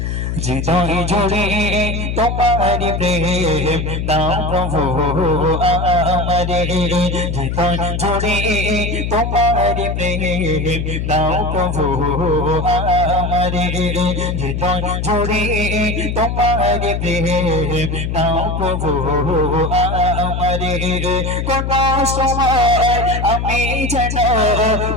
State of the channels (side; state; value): left; noise; hum, 2 dB below the sound